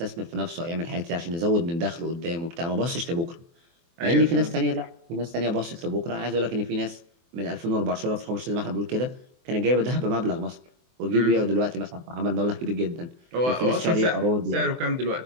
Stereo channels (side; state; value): left; late; 24 ms